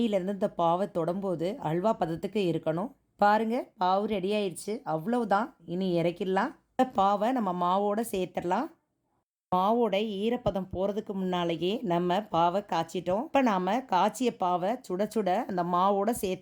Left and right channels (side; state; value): both; identical; correlation 1.00